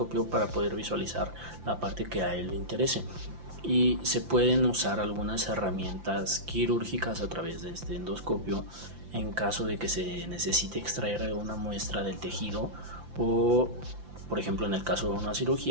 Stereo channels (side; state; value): left; late; 5.8 ms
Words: para poder visualizar la parte que a él le interese. Y se pueden usar algunas herramientas quirúrgicas a través de este endoscopio en caso de que se necesite extraer una muestra del tejido o, por ejemplo, en el caso de una